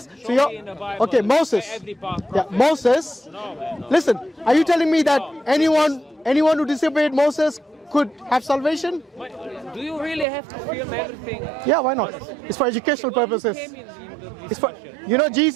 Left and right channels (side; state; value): left; drops out; at 10.2 s